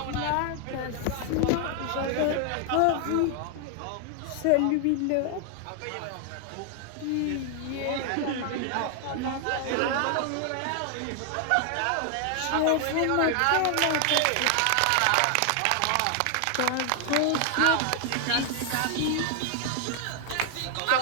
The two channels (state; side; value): different; both; correlation 0.00